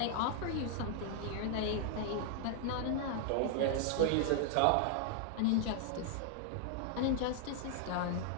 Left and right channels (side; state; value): both; different; correlation 0.00